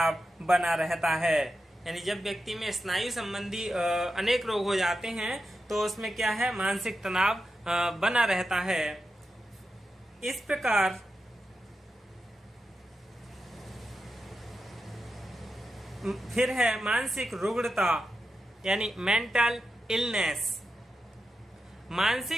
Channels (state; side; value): normal; both; correlation 0.89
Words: बना रहता है। यानी जब व्यक्ति में स्नायु संबंधी अनेक रोग हो जाते हैं तो उसमें क्या है मानसिक तनाव बना रहता है। इस प्रकार फिर है मानसिक रुग्णता यानी मेंटल इलनेस।